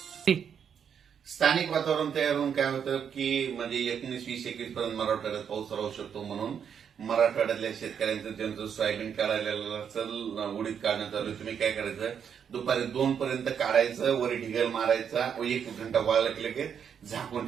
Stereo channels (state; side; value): quieter; left; 7.7 dB